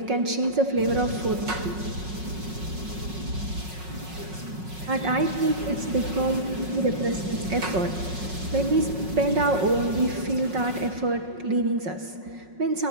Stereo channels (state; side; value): late; left; 5.4 ms